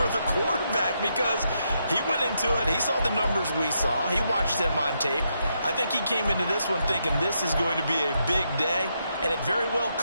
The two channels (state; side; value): inverted; both; correlation -0.80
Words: the quarterback, because he went into it, he saw the numbers we saw, he watched them on tape. I think he came into this one thinking this is going to be a big day, and it very well